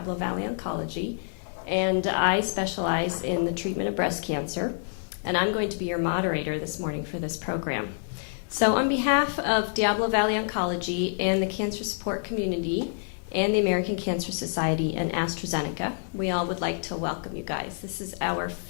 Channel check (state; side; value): silent; right; digital silence